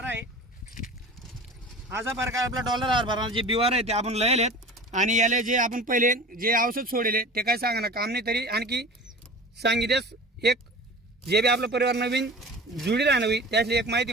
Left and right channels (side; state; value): both; normal; correlation 0.38